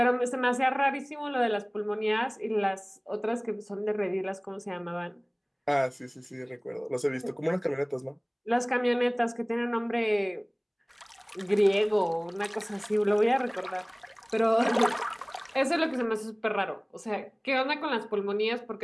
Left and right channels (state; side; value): identical; both; correlation 1.00